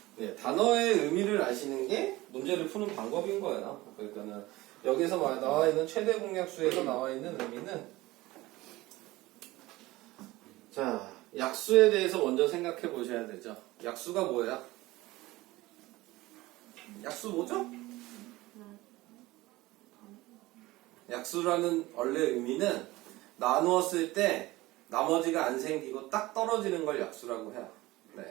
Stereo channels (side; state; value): left; quieter; 19.1 dB